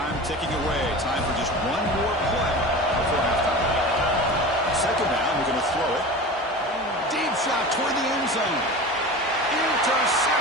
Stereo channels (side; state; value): both; normal; correlation 0.33